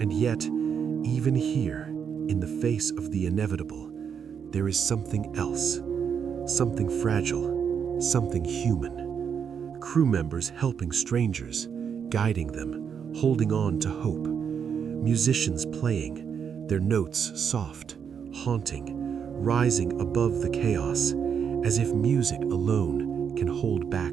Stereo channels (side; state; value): left; quieter; 7.3 dB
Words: yet, even here, in the face of the inevitable, there is something else, something fragile, something human. Crew members helping strangers, guiding them, holding on to hope. Musicians playing, their notes soft, haunting, rising above the chaos, as if music alone can hold back